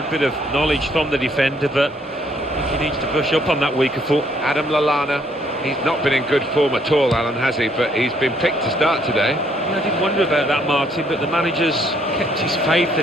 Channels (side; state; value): both; normal; correlation 0.67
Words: bit of knowledge from the defender, but I think he needs to brush up on that weaker foot. Adam Lallana, he's not been in good form at all, Alan, has he? But he's been picked to start today. Yeah, I did wonder about that, Martin, but the manager's kept his faith